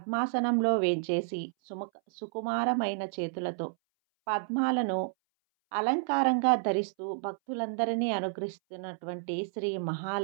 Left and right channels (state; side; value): silent; left; 57 dB below the other